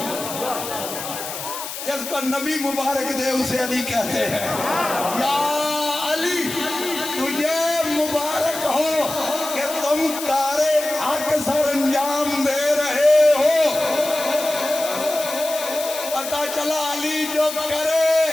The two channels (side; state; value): left; noise; hiss, 8 dB below the sound